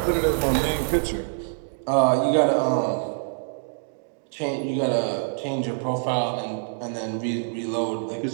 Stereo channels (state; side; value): silent; left; digital silence